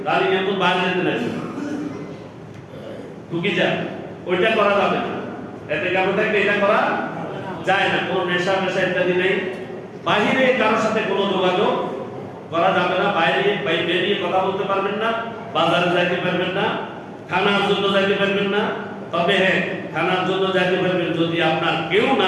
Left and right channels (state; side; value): identical; both; correlation 1.00